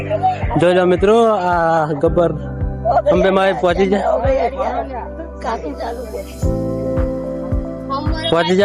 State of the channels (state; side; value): identical; both; correlation 1.00